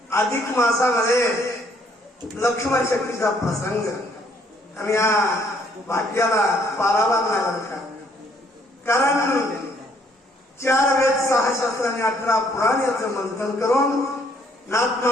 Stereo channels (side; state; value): both; normal; correlation 0.66